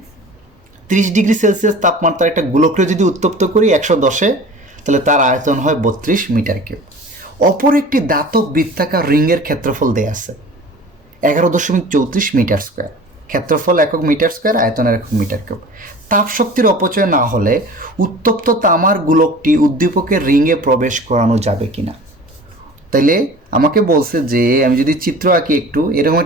30 ডিগ্রি সেলসিয়াস তাপমাত্রা একটা গোলককে যদি উত্তপ্ত করি 110-এ, তাহলে তার আয়তন হয় 32 মিটার কিউব। অপর একটি ধাতব বৃত্তাকার রিংয়ের ক্ষেত্রফল দেয়া আছে 11.34 মিটার স্কোয়ার। ক্ষেত্রফল একক মিটার স্কোয়ার, আয়তনের একক মিটার কিউব। তাপ শক্তির অপচয় না হলে উত্তপ্ত তামার গোলকটি উদ্দীপকের রিংয়ে প্রবেশ করানো যাবে কিনা। তাইলে আমাকে বলছে যে আমি যদি চিত্র আঁকি একটু, এরকম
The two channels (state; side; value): normal; both; correlation 0.41